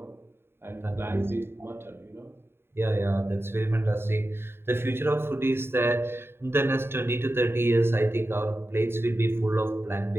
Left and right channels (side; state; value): left; late; 0.11 ms